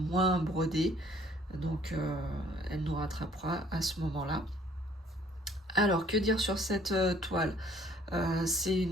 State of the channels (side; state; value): both; normal; correlation 0.59